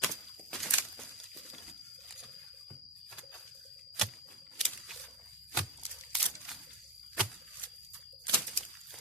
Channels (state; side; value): normal; both; correlation 0.10